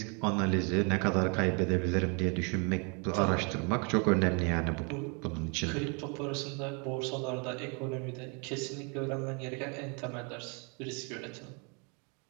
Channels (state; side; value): quieter; left; 34.0 dB